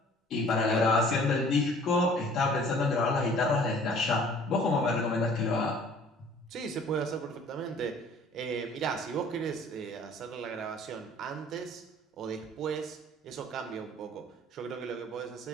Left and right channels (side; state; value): both; normal; correlation 0.52